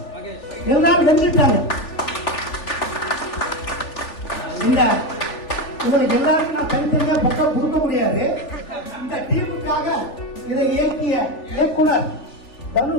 எல்லாரும் வென்றுட்டாங்க. இந்த உங்களுக்கு எல்லாருக்கும் நான் தனித்தனியா பக்கம் கொடுக்க முடியாது. இந்த டீமுக்காக இதை இயக்கிய இயக்குனர்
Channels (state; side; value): late; right; 3.4 ms